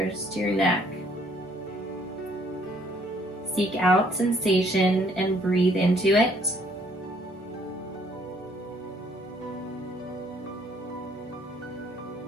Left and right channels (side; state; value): both; normal; correlation 0.63